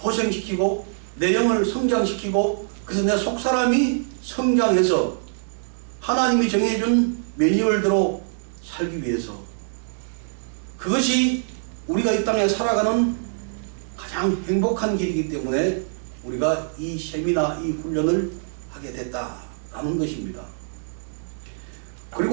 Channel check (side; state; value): left; silent; digital silence